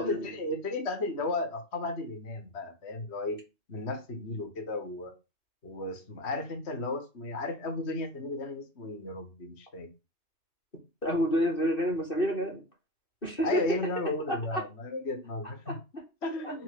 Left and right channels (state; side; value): late; right; 2.6 ms